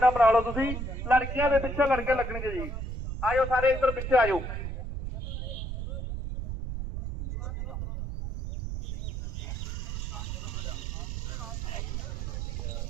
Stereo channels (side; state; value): right; noise; rumble, 4 dB below the sound